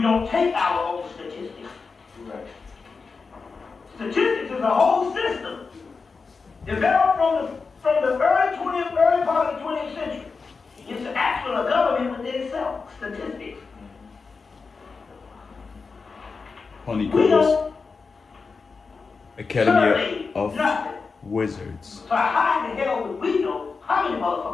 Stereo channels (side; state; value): right; quieter; 4.7 dB